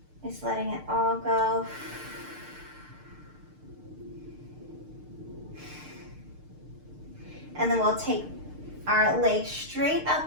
Just letting it all go. And then we'll take our legs straight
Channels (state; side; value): late; left; 6.6 ms